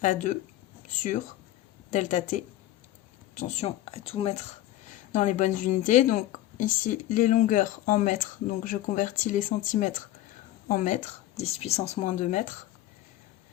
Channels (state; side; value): quieter; right; 14.6 dB